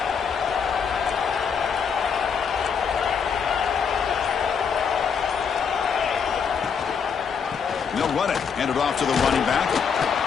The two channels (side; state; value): right; quieter; 6.5 dB